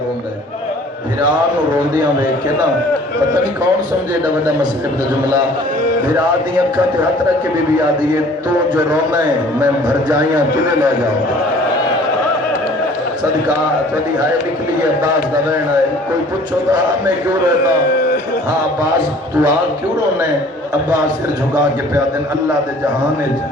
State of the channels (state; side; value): normal; both; correlation 0.52